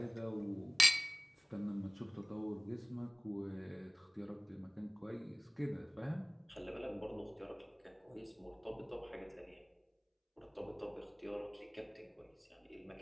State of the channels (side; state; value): both; identical; correlation 1.00